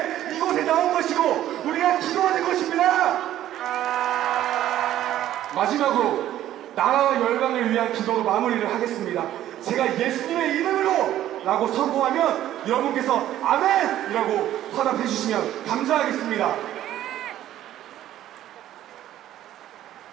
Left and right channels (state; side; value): quieter; left; 12.7 dB